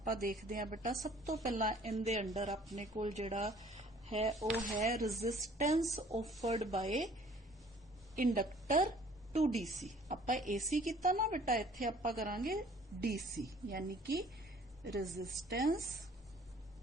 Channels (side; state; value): both; normal; correlation 0.55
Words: देखदे आ बेटा, सब तो पहला इहदे अंडर अपने कोल जिहड़ा है वो है resistance offered by inductor to DC. आपां एसी कीता ना बेटा, इत्थे आपां करांगे डीसी, यानी कि resistance